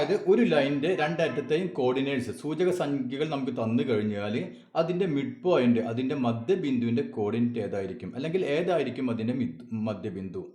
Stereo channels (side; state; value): both; identical; correlation 1.00